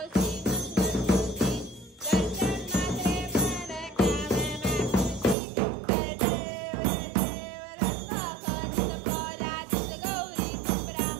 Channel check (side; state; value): left; drops out; at 5.4 s